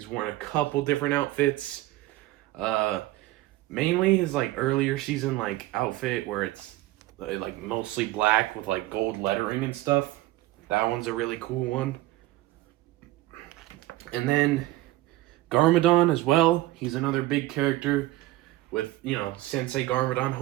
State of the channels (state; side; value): quieter; left; 17.2 dB